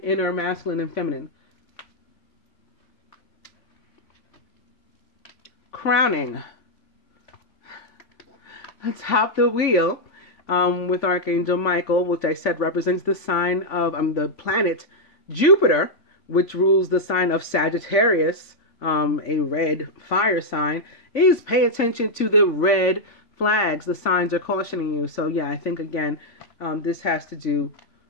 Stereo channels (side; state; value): right; late; 3.5 ms